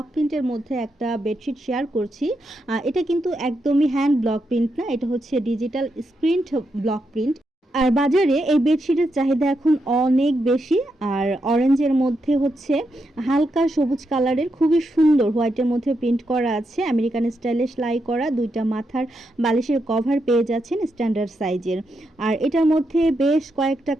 প্রিন্টের মধ্যে একটা বেডশিট শেয়ার করছি। এটা কিন্তু একদমই হ্যান্ড ব্লক প্রিন্ট না, এটা হচ্ছে ডিজিটাল স্ক্রিন ব্লক প্রিন্ট। আর বাজারে এই বেডশিটের চাহিদা এখন অনেক বেশি। আর অরেঞ্জের মধ্যে হচ্ছে হালকা সবুজ কালারের খুবই সুন্দর হোয়াইটের মধ্যে প্রিন্ট করা আছে, আমেরিকান স্টাইলে সেলাই করা দুইটা মাথার বালিশের কভার পেয়ে যাচ্ছেন স্ট্যান্ডার্ড সাইজের। আর এটার মধ্যে বেশ কয়েকটা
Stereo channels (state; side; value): normal; both; correlation 0.83